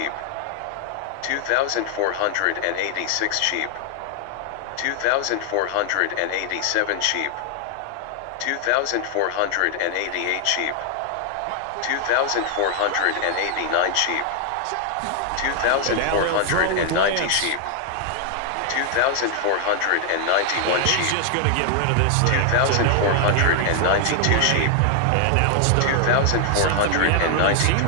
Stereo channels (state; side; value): different; both; correlation 0.00